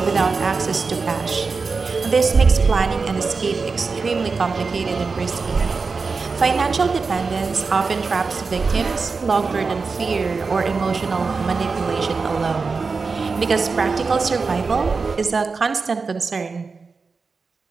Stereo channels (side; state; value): left; quieter; 4.6 dB